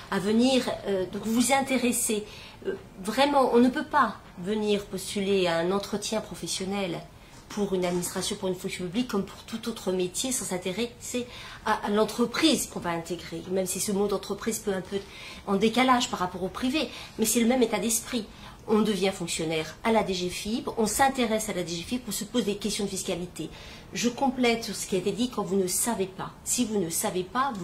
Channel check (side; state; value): both; identical; correlation 1.00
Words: à venir. Donc vous vous intéressez. Vraiment, on ne peut pas venir postuler à un entretien professionnel pour une administration, pour une fonction publique, comme pour tout autre métier, sans s'intéresser à l'entreprise qu'on va intégrer. Même si ce mot d'entreprise peut un peu en décalage par rapport au privé, mais c'est le même état d'esprit. on devient fonctionnaire à la DGFiP, on s'intéresse à la DGFiP, on se pose des questions de fiscalité. Je complète sur ce qui a été dit quand vous ne savez pas. Si vous ne savez pas,